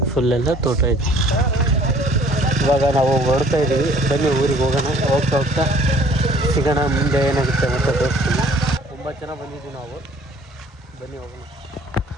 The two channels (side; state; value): both; normal; correlation 0.56